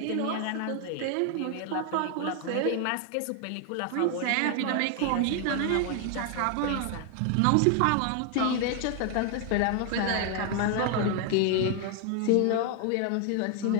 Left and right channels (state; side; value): different; both; correlation 0.00